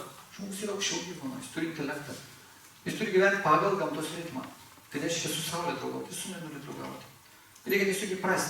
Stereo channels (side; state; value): both; identical; correlation 1.00